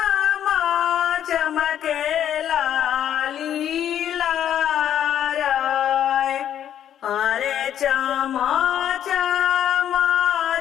चमकेला लीला राय। अरे चमा चमा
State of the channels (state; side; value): quieter; right; 10.2 dB